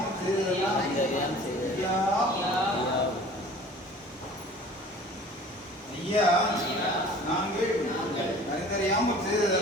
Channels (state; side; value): normal; both; correlation 0.45